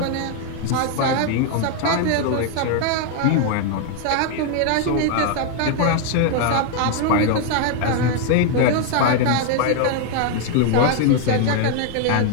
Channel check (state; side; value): different; both; correlation 0.00